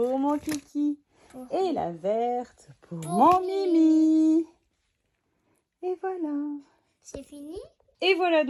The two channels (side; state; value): both; identical; correlation 1.00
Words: mon Kiki. Et la verte pour mon Mimi. Et voilà. C'est fini? Et voilà